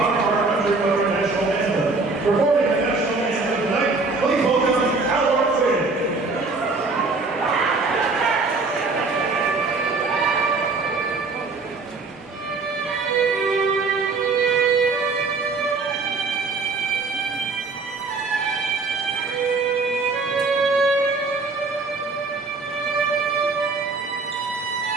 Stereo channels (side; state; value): left; quieter; 4.0 dB